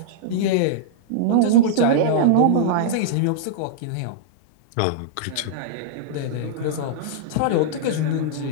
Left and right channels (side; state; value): both; different; correlation -0.02